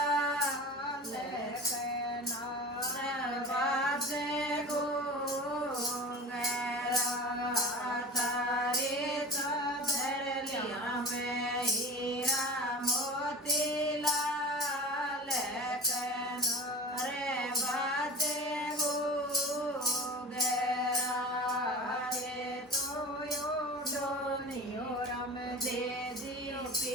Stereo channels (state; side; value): normal; both; correlation 0.35